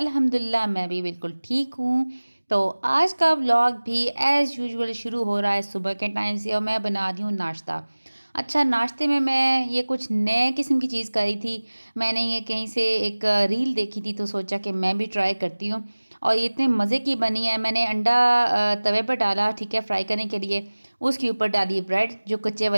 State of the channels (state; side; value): inverted; both; correlation -1.00